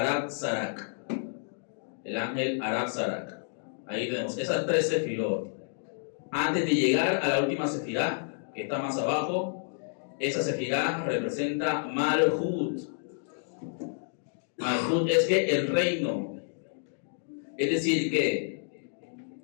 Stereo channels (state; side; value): silent; right; digital silence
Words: Sarak, el ángel Arab Sarak. Ahí tenemos esas tres sefirot. Antes de llegar a la última sefirá, que está más abajo, esa sefirá representa Malhut. Malhut es que el reino. Es decir, que